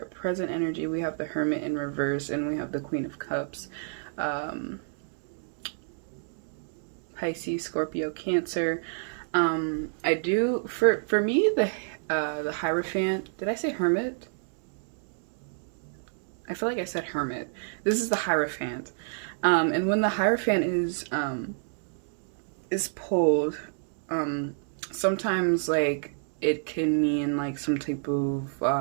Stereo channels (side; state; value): left; silent; digital silence